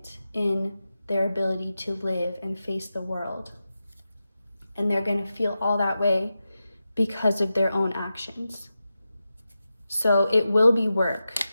in their ability to live and face the world. And they're going to feel all that way because of their own actions. So it will be work.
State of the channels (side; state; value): both; inverted; correlation -0.91